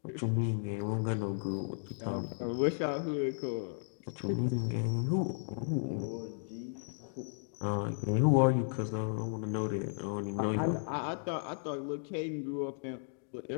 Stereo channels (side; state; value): right; silent; digital silence